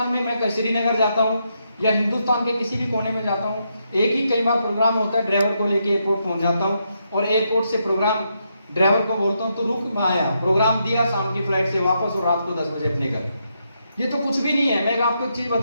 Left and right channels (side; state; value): both; inverted; correlation -0.80